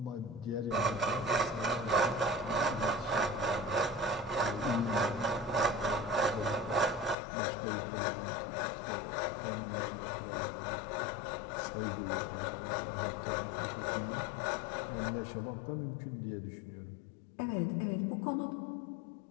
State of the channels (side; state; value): right; drops out; at 7.2 s